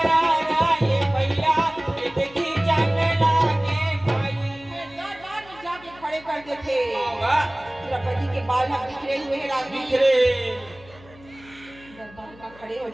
द्रौपदी के बाल हम बिखरे हुए हैं रानी दरबार का खड़े हो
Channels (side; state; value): left; noise; hum, 23 dB below the sound